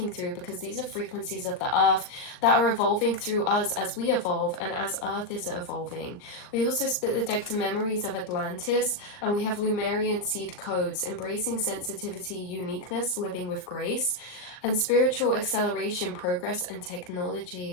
through, because these are frequencies of the earth that are evolving through us as we evolve and as earth is evolving. We also split the deck to memories of Atlantis, and we have Lumerian seed codes, embracing sensitivity, uniqueness, living with grace, and spiritual acceleration, progress, and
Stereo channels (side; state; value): right; late; 39 ms